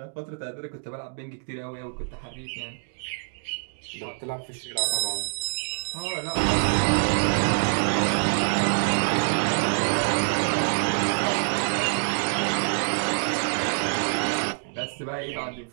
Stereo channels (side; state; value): left; silent; digital silence